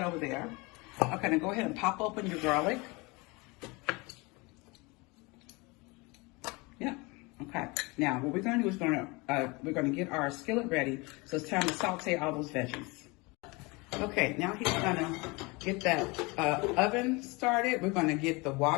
over there. Okay, now go ahead and pop open your garlic. Yeah. Okay. Now what we're gonna do is we're gonna get our skillet ready. So it's time to saute all those veggies. Okay, now he's gonna get that oven started. We're gonna get the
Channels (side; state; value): right; quieter; 26.1 dB